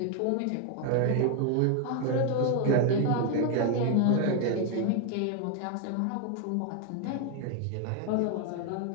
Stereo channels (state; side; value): different; both; correlation 0.01